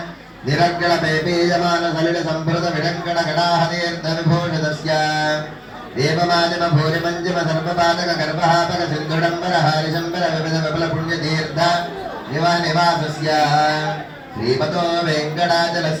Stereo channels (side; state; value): both; identical; correlation 1.00